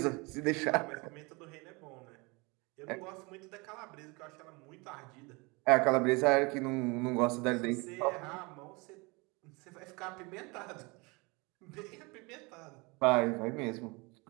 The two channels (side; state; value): left; quieter; 27.1 dB